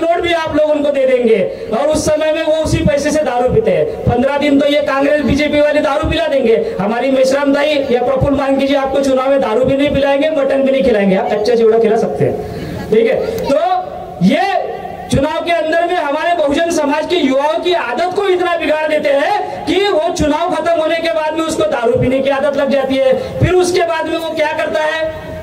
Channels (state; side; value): identical; both; correlation 1.00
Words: भी आप लोगों को दे देंगे और उस समय में वो उसी पैसे से दारू पीते हैं। 15 दिन तो ये कांग्रेस बीजेपी वाले दारू पिला देंगे, हमारी मेश्राम दाई या प्रफुल्ल मानकी जी आपको चुनाव में दारू भी नहीं पिलाएंगे, मटन भी नहीं खिलाएंगे, आप कच्चा चिवड़ा खिला सकते हैं। ठीक है, तो ये चुनाव के अंदर में हमारे बहुजन समाज के युवाओं की आदत को इतना बिगाड़ देते हैं कि वो चुनाव खत्म होने के बाद में उसको दारू पीने की आदत लग जाती है। फिर उसके बाद में वो क्या करता है,